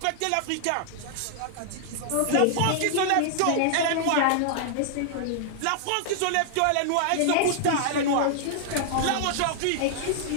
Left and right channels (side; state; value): both; different; correlation -0.01